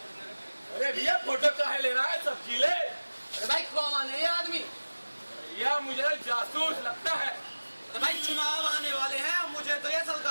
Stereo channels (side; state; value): both; inverted; correlation -1.00